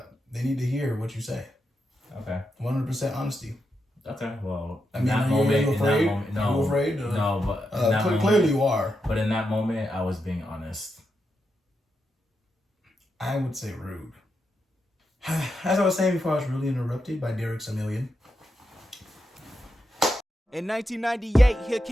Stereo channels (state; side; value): normal; both; correlation 0.85